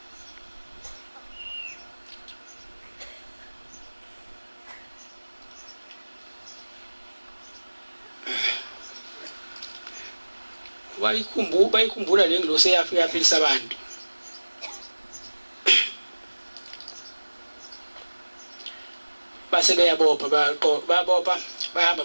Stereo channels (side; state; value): both; inverted; correlation -1.00